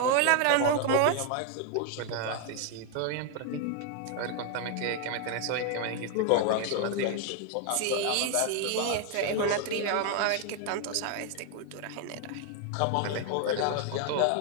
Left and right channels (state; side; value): different; both; correlation 0.01